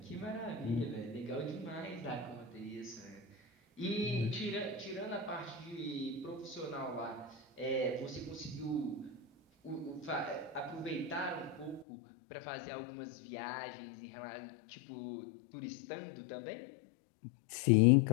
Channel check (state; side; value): drops out; right; at 11.9 s